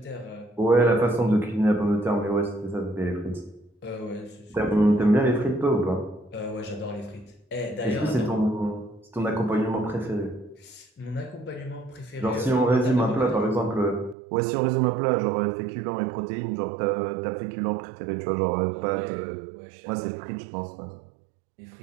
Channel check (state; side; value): drops out; left; at 14.2 s